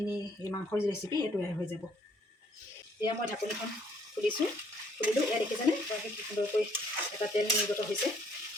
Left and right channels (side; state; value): both; normal; correlation 0.64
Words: মাংসৰ যি ৰেচিপি এই তৈয়াৰ হৈ যাব। এয়া মই ঢাকনিখন খুলিলোঁ। এয়া দেখিছেনে কি সুন্দৰকৈ এটা তেল নিৰ্গত হৈছে।